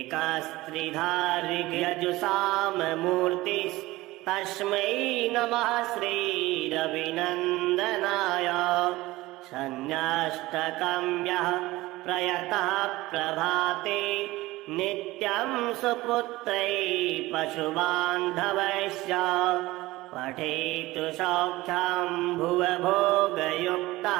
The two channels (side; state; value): left; quieter; 18.9 dB